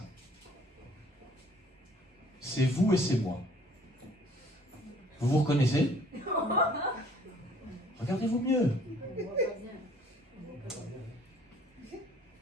C'est vous et c'est moi. Vous vous reconnaissez? Regardez-vous mieux.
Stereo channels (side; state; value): both; normal; correlation 0.56